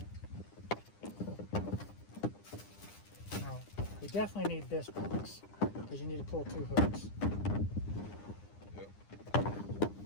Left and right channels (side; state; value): right; late; 9.9 ms